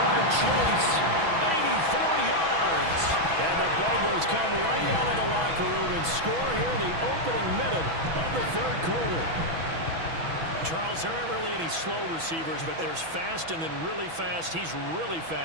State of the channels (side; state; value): left; late; 6.1 ms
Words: Chase. 84 yards. And the Bengals come right out of the locker room and score here in the opening minute of the third quarter. Charles, there aren't really any slow receivers, but there's fast and then really fast. He's really